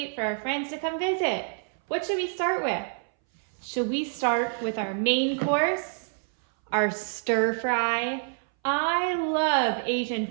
for our friends to come visit. What should we start with? Should we start with our main course, our stir fry? I love Asian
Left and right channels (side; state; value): left; silent; 60 dB below the other